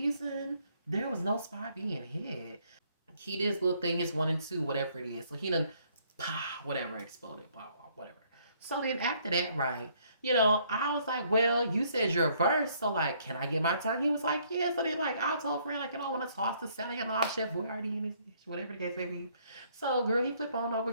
there was no spot being hit. He did his little thing, his 1 and 2, whatever it is. So he done, whatever, exploded, blah, blah, whatever. So then after that, right, I was like, well, you said your verse, so like, can I get my turn? He was like, yeah. So then like, I told friend, like, I want to toss the salad and all chef boy already in his dish, whatever the case may be. So girl, he flip on over,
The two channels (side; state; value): both; inverted; correlation -0.66